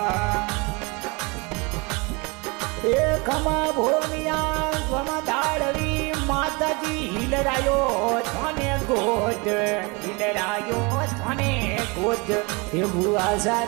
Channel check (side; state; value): left; quieter; 28.3 dB